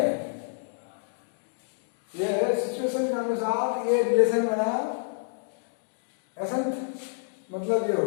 ये सिचुएशन के अनुसार ये रिलेशन बना, एसेंट मतलब ये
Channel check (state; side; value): silent; right; digital silence